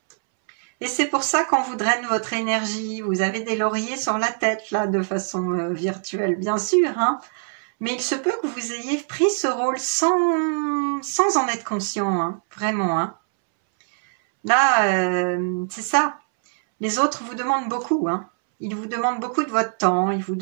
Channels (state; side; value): silent; left; 64 dB below the other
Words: Et c'est pour ça qu'on vous draine votre énergie. Vous avez des lauriers sur la tête, là, de façon virtuelle, bien sûr. Hein. Mais il se peut que vous ayez pris ce rôle sans en être conscient, hein, vraiment. Hein. Là, c'est ça. Les autres vous demandent beaucoup. Hein. Ils vous demandent beaucoup de votre temps, ils vous